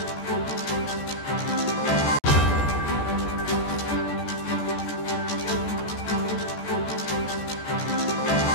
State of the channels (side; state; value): right; late; 14 ms